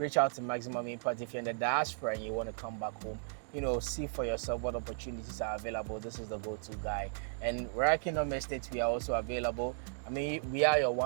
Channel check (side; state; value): left; silent; digital silence